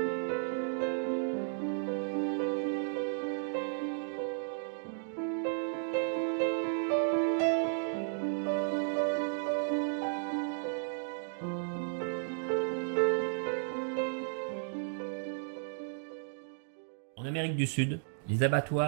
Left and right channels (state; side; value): silent; left; digital silence